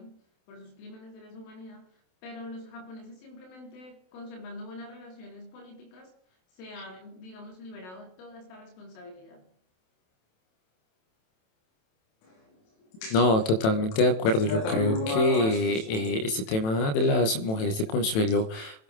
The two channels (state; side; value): late; right; 27 ms